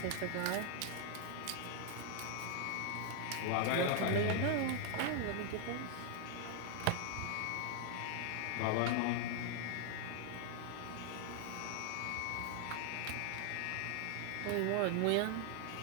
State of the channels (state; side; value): different; both; correlation 0.00